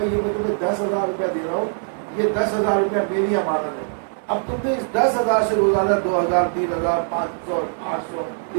یہ میں تمہیں 10,000 روپیہ دے رہا ہوں، یہ 10,000 روپیہ میری امانت ہے، اب تم نے اس 10,000 سے روزانہ 2,000 3,000 500 800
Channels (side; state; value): left; silent; digital silence